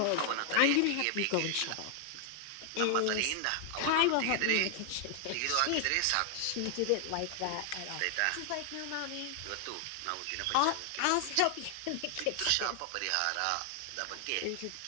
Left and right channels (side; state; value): both; different; correlation 0.00